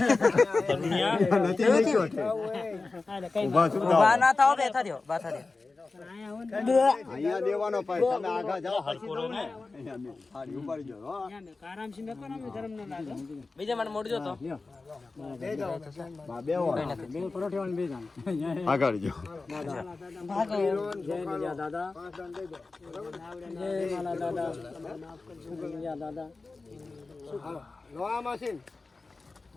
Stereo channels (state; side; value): quieter; right; 3.7 dB